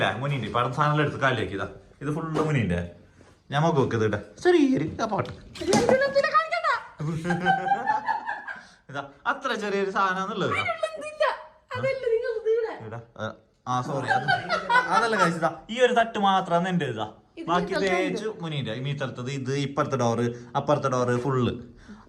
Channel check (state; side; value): identical; both; correlation 1.00